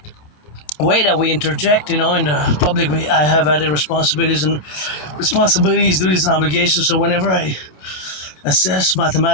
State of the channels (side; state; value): right; late; 27 ms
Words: way that we interject, in the public, I have added responsibilities, duties, and obligations. So whenever I assess